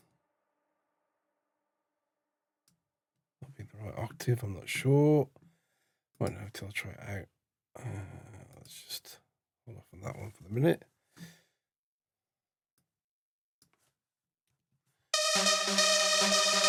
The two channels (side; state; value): both; identical; correlation 1.00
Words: be the right octave, I'm not sure. Won't know until I try it out. Let's just hold off on that one for the minute.